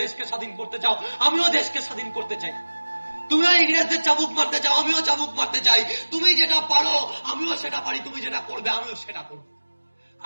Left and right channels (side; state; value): both; inverted; correlation -1.00